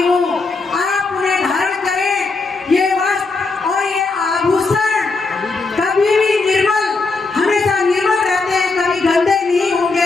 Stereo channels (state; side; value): quieter; right; 3.9 dB